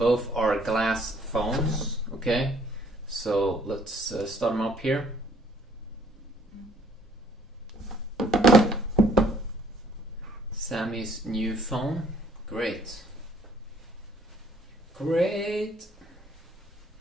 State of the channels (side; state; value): both; normal; correlation 0.61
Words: are glass phones, okay, so let's start them up here. Sammy's new phone, great. Great.